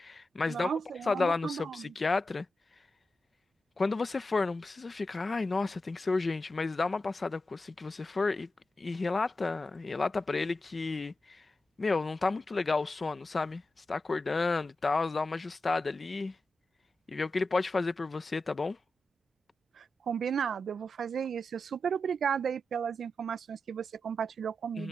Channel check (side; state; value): both; normal; correlation 0.90